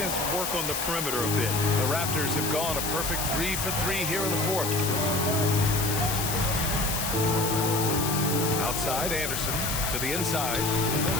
work on the perimeter a bit. The Raptors have gone a perfect 3 for 3 here in the fourth. Outside, Anderson to the inside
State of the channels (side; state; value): left; noise; hiss, 2 dB below the sound